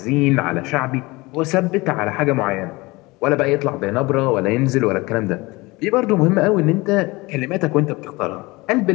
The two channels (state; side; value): quieter; right; 22.8 dB